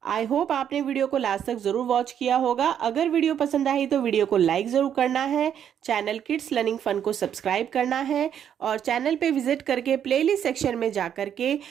I hope आपने वीडियो को लास्ट तक जरूर वॉच किया होगा। अगर वीडियो पसंद आई तो वीडियो को लाइक जरूर करना है, चैनल किड्स लर्निंग फन को सब्सक्राइब करना है और चैनल पे विजिट करके प्लेलिस्ट सेक्शन में जा करके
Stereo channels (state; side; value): quieter; left; 9.1 dB